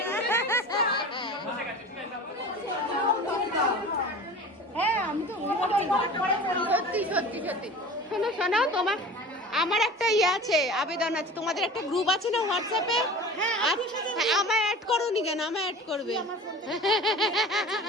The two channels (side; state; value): both; normal; correlation 0.38